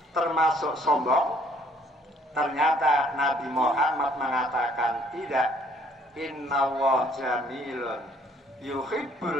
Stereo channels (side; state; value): both; normal; correlation 0.62